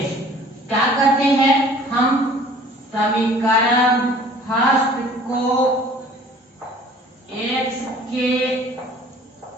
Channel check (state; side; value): normal; both; correlation 0.51